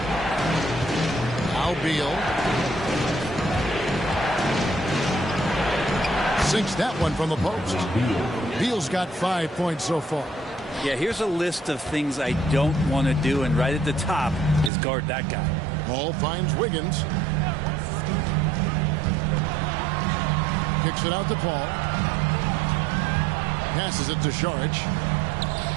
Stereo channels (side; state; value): left; drops out; at 14.7 s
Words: Now Beal. Sinks that one from the post. Beal's got 5 points so far. Yeah, here's a list of things I don't want to do, and right at the top is guard that guy. Ball finds Wiggins. Kicks it out to Paul. Passes it to Saric.